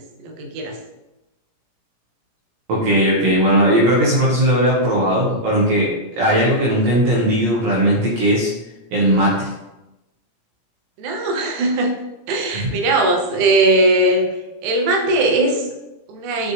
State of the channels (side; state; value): left; late; 17 ms